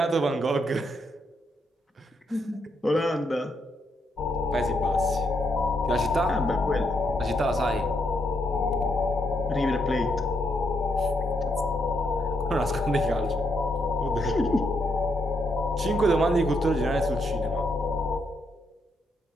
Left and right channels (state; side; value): normal; both; correlation 0.78